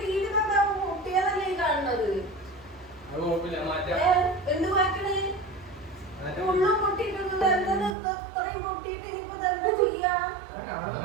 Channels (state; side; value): drops out; left; at 8.0 s